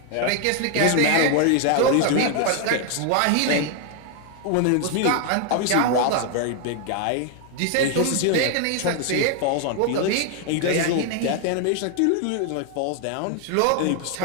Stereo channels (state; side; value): different; both; correlation 0.00